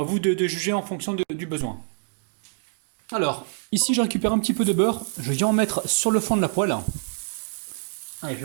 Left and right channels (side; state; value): left; silent; digital silence